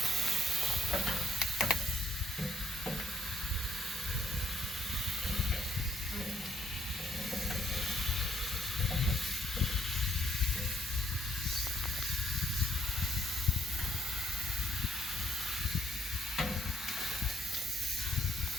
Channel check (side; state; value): both; normal; correlation 0.71